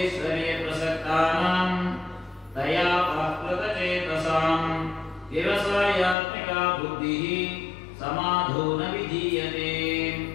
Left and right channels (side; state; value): right; drops out; at 6.2 s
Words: ಪ್ರಸಕ್ತಾನಾಂ ತಯಾ ಪ್ರಾಕೃತ ಚೇತಸಾಂ ವ್ಯವಸಾಯಾತ್ಮಿಕ ಬುದ್ಧಿ ಸಮಾಧೋ ನ ವಿಧೀಯತೆ.